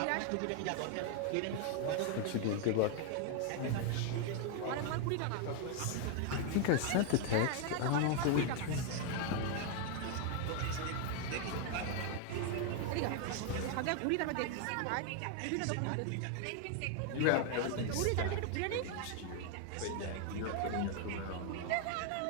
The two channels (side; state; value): both; different; correlation 0.00